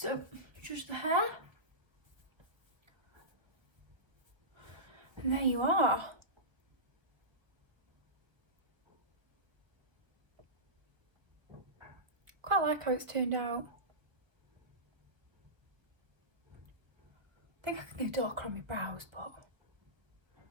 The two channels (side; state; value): left; late; 1.1 ms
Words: just the hair. And there you are. Quite like how it's turned out. I think I can go darker on my brows, but